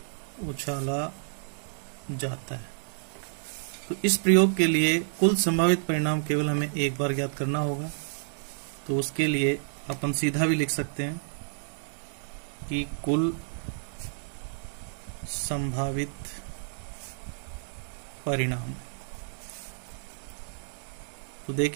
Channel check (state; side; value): silent; left; digital silence